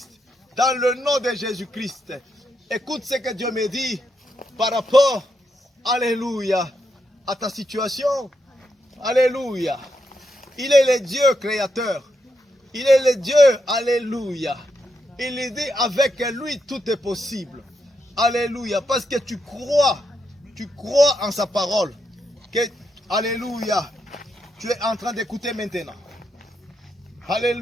Dans le nom de Jésus-Christ. Écoute ce que Dieu me dit par rapport, alléluia, à ta situation. Alléluia. Il est le Dieu créateur. Il est le Dieu, alléluia. Il dit avec lui tout est possible. Alléluia. Parce que tu crois en sa parole. Que, alléluia, tu es en train d'écouter maintenant.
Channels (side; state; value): both; normal; correlation 0.82